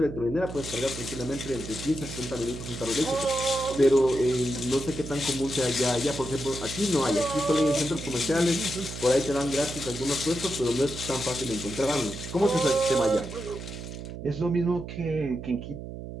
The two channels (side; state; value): right; noise; hum, 9 dB below the sound